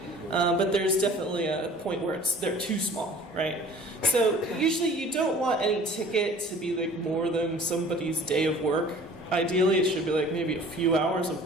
but there's definitely a point where they're too small, right? So usually you don't want any ticket to be more than somebody's day of work. Ideally it should be maybe a few hours of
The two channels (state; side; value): normal; both; correlation 0.48